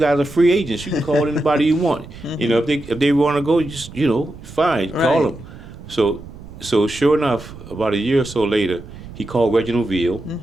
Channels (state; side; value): noise; right; rumble, 15 dB below the sound